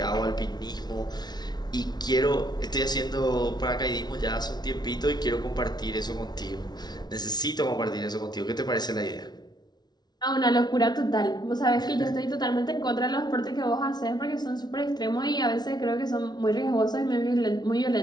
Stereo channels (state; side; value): late; right; 0.19 ms